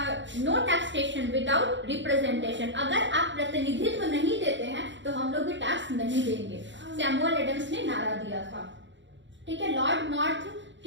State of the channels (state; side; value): late; left; 0.54 ms